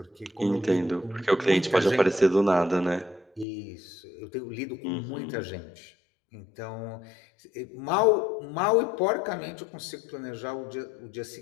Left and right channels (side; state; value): right; drops out; at 3.5 s